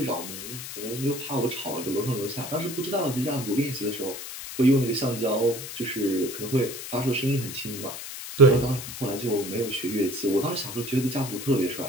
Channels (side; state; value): left; noise; hiss, 9 dB below the sound